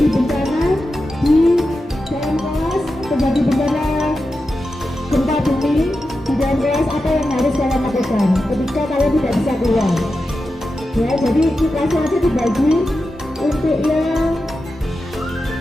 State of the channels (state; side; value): normal; both; correlation 0.90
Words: bencana di dalam kelas, terjadi bencana gempa bumi di dalam kelas, apa yang harus kalian lakukan ketika kalian tidak bisa keluar, ya. Jadi kelasnya aja dibagi untuk yang